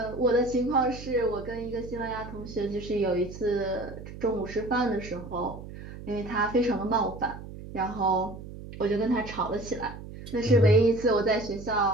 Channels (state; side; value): noise; right; hum, 13 dB below the sound